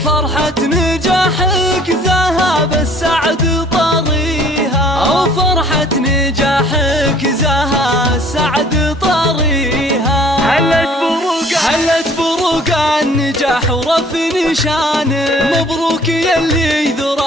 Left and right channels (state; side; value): normal; both; correlation 0.54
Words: فرحة نجاحك ذهب السعد طريها، وفرحة نجاحك زها السعد طريها. هلت بروق النجاح ورفي نشانه، مبروك يلي